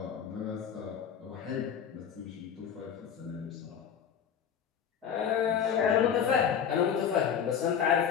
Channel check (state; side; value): quieter; right; 8.0 dB